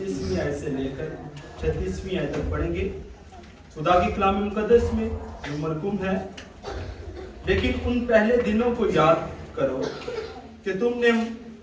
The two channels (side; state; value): both; identical; correlation 1.00